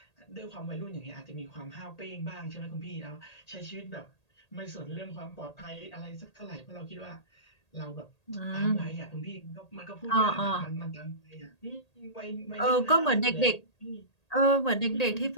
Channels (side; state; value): right; late; 1.8 ms